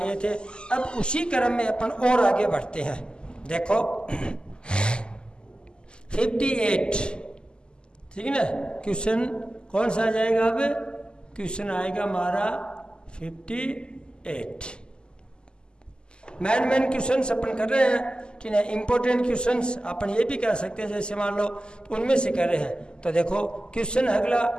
थे। अब उसी क्रम में अपन और आगे बढ़ते हैं। देखो 58, ठीक है ना, क्वेश्चन कौन सा आ जाएगा? अब क्वेश्चन आएगा हमारा 58। मैन क्वेश्चंस अपन कर रहे हैं, ठीक है। इंपॉर्टेंट क्वेश्चंस अपन ये भी कह सकते हैं, जैसे मान लो तो उनमें से कर रहे हैं। तो देखो क्वेश्चन अगला,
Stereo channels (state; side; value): late; right; 0.048 ms